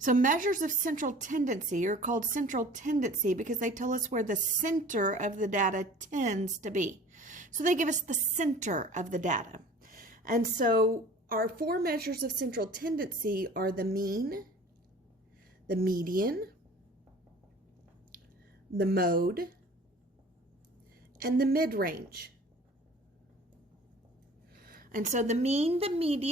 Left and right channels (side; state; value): both; normal; correlation 0.46